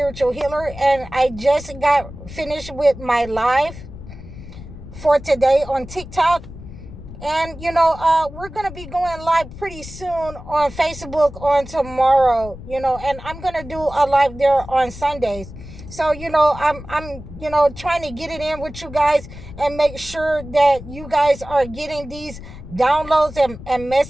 healer. And I just got finished with my live for today on TikTok. And, we're going to be going live pretty soon on Facebook on tomorrow, and I'm going to do a live there on Sundays. So, I'm trying to get it in with you guys and make sure that you guys are getting these downloads and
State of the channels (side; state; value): left; noise; rumble, 14 dB below the sound